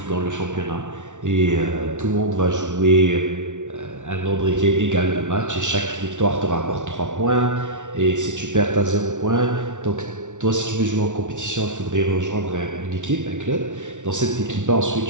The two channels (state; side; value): late; left; 0.86 ms